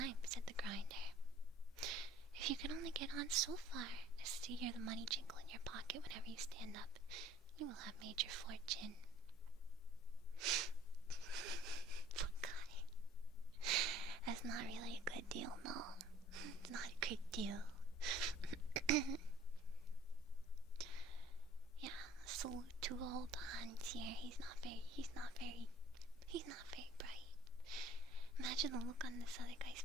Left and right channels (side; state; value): both; normal; correlation 0.52